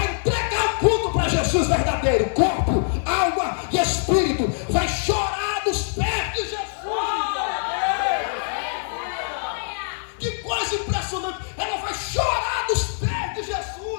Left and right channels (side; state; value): right; silent; digital silence